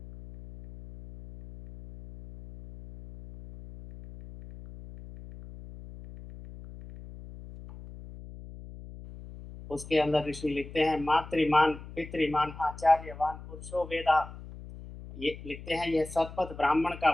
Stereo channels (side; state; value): left; noise; hum, 15 dB below the sound